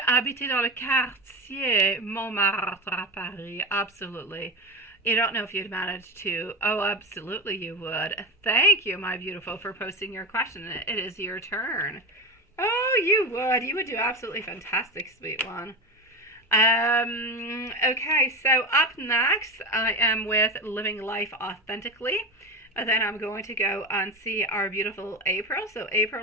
habiter dans le quartier Montmartre à Paris. Absolutely. You don't know if you'd manage to. Oh, absolutely you would. Thank you, my beautiful, for posting your question. It is your turn. Oh, you would. You would do absolutely fantastic, sweet one. Okay, so up next, I am with Living Life Authentically. And then I'm going to go and see our beautiful April. So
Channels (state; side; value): normal; both; correlation 0.23